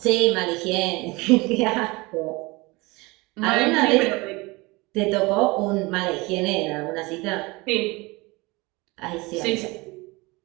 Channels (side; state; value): left; quieter; 24.0 dB